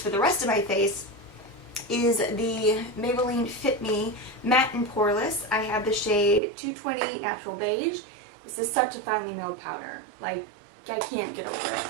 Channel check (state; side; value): drops out; left; at 6.4 s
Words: the rest of my face is the Maybelline Fit Me Matte and Poreless. I have the shade 220 Natural Beige. This is such a finely milled powder. Like, I can't get over